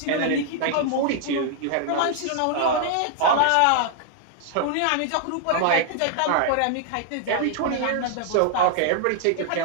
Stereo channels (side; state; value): both; different; correlation 0.00